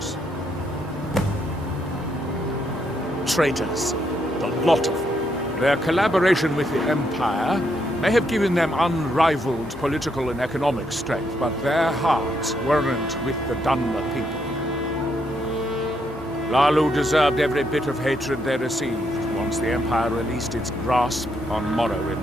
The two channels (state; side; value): normal; both; correlation 0.76